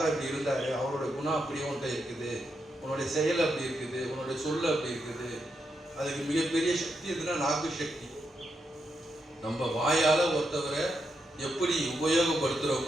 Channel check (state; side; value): normal; both; correlation 0.83